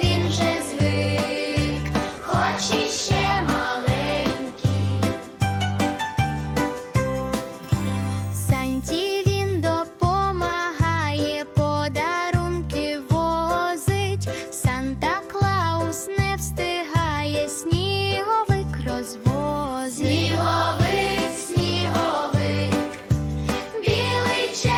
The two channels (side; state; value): both; identical; correlation 1.00